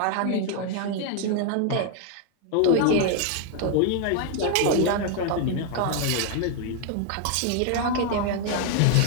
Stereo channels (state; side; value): different; both; correlation 0.00